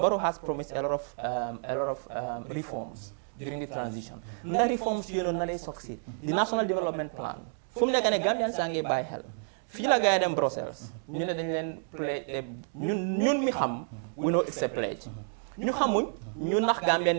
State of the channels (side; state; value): left; silent; digital silence